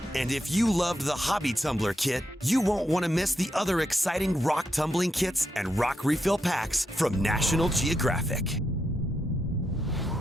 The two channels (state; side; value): normal; both; correlation 0.83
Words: And if you loved the Hobby Tumbler Kit, you won't want to miss the other exciting rock tumbling kits and rock refill packs from National Geographic.